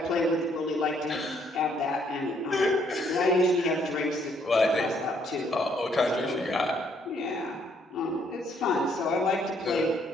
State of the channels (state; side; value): normal; both; correlation 0.68